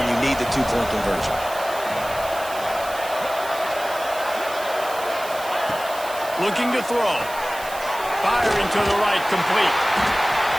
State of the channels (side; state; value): right; noise; hiss, 14 dB below the sound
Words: you need the 2-point conversion? Looking to throw. Firing to the right, complete.